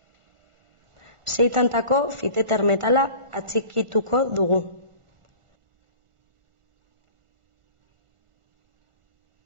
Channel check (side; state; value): left; late; 1.4 ms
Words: 6 tantako fiteter metala atxikituko dugu.